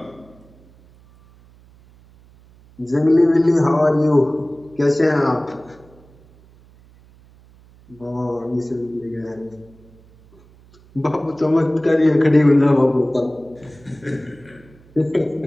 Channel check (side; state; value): right; noise; hum, 27 dB below the sound